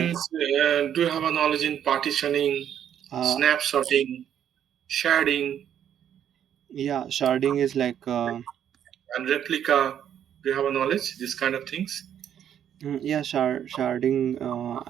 do you have a knowledge in partitioning, uh, snapshotting, sharding, yeah, sharding is like and replica? Do you have a knowledge this kind of things? yeah, sharding,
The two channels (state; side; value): quieter; left; 9.6 dB